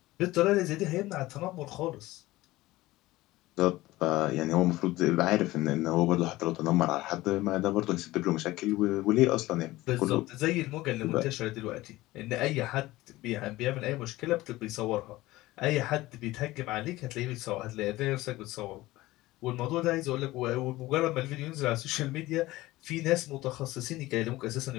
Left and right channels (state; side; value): quieter; right; 18.1 dB